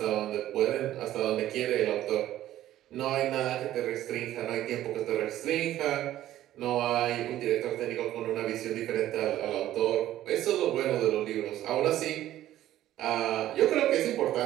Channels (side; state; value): left; quieter; 13.4 dB